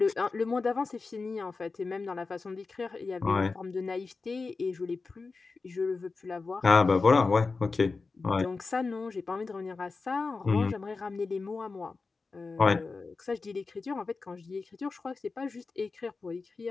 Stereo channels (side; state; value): right; quieter; 4.2 dB